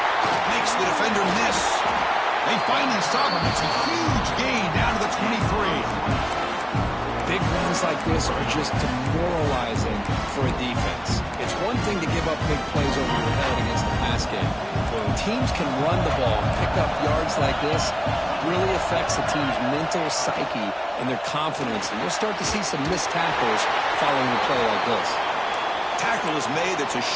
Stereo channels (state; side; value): identical; both; correlation 1.00